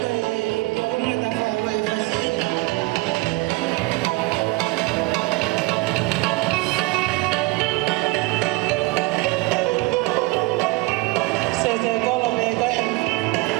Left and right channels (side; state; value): left; quieter; 22.8 dB